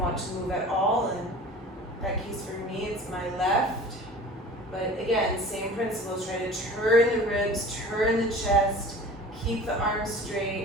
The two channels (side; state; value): both; normal; correlation 0.41